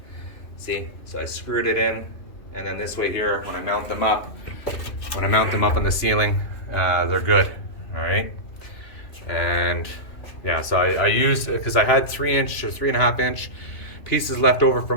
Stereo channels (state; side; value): late; right; 2.9 ms